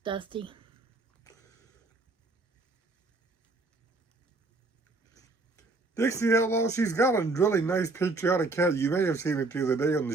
Dusty. Dixie Outlaw, she's got a really nice patriotic cat. You may have seen it the other day on the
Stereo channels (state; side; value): quieter; left; 3.3 dB